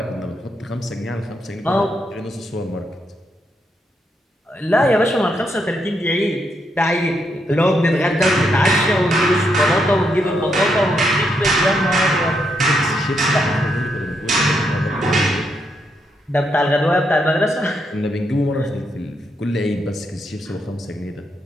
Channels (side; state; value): both; normal; correlation 0.79